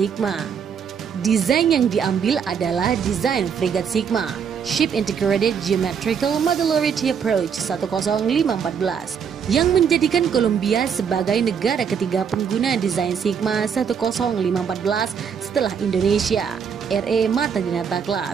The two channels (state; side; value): quieter; left; 7.0 dB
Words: Desain yang diambil adalah desain frigat Sigma, Ship Integrated Geometrical Modularity Approach 10514, yang menjadikan Kolombia sebagai negara ketiga pengguna desain Sigma 10514 setelah Indonesia, RE Mata Dinata